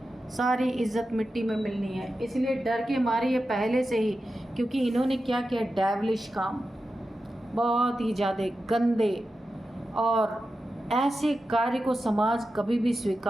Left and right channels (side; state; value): both; normal; correlation 0.91